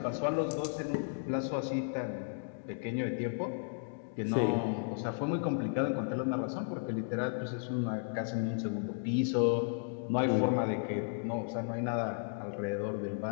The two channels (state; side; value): silent; right; digital silence